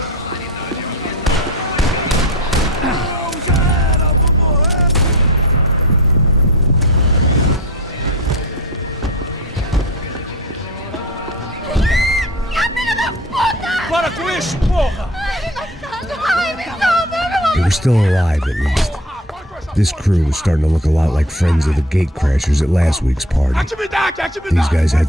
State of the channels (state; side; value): normal; both; correlation 0.35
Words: They were still alive, at least. This crew was starting to look a lot like friends of the gatecrashers at last week's party. These guys had